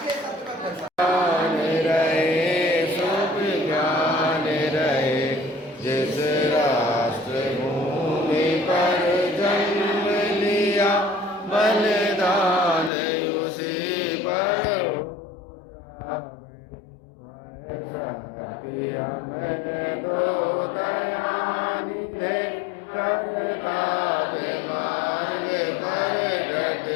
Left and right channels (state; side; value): drops out; right; at 12.9 s